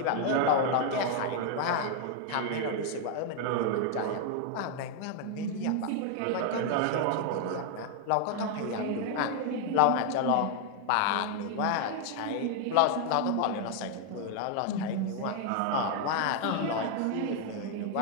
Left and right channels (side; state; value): both; different; correlation 0.00